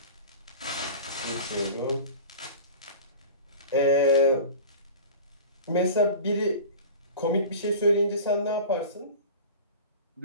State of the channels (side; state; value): both; inverted; correlation -0.36